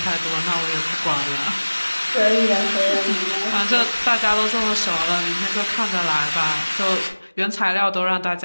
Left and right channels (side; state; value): both; inverted; correlation -1.00